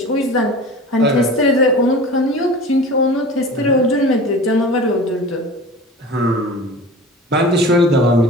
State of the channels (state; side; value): normal; both; correlation 0.37